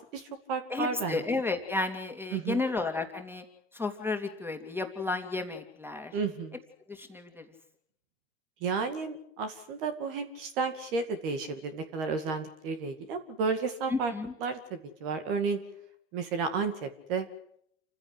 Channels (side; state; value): both; normal; correlation 0.33